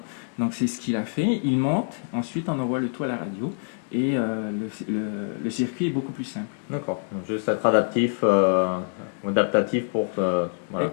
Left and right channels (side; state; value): right; silent; digital silence